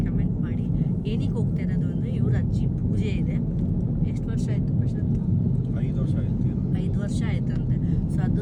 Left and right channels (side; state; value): both; identical; correlation 1.00